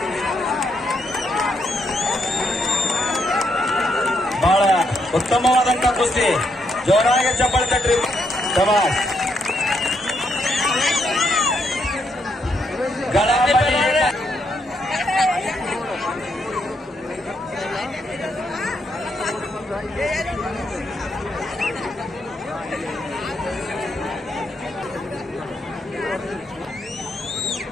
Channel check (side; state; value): both; normal; correlation 0.77